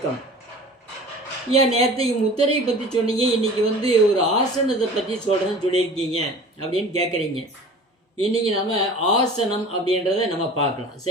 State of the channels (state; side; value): normal; both; correlation 0.42